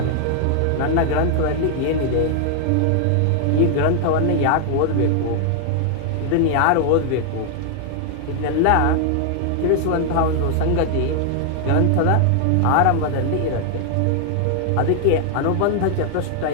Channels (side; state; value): both; different; correlation 0.00